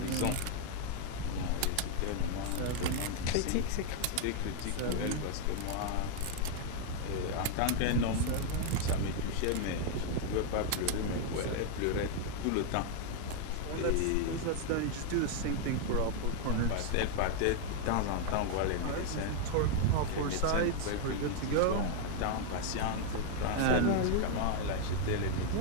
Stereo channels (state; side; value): different; both; correlation 0.00